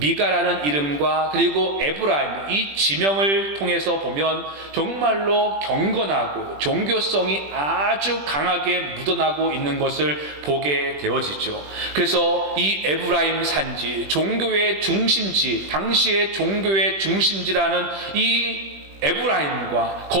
이름과 그리고 에브라임, 이 지명을 통해서 보면 정말로 경건하고 종교성이 아주 강하게 묻어나고 있는 것을 보게 되어지죠. 그래서 이 에브라임 산지, 종교의 중심지, 당시의 종교의 중심지라는 이 에브라임과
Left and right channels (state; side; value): late; left; 20 ms